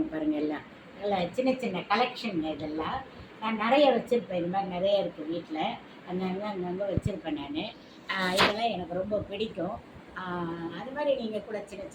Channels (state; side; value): identical; both; correlation 1.00